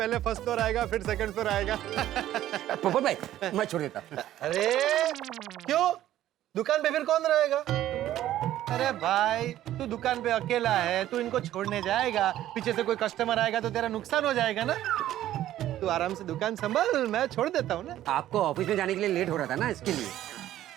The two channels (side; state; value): left; quieter; 13.1 dB